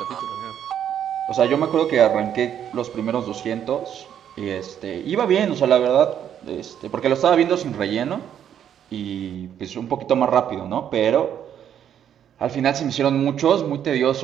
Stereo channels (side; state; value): left; quieter; 9.5 dB